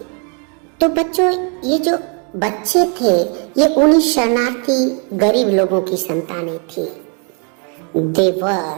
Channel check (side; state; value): left; quieter; 38.6 dB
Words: तो बच्चों, ये जो बच्चे थे ये उन्हीं शरणार्थी गरीब लोगों की संतानें थी।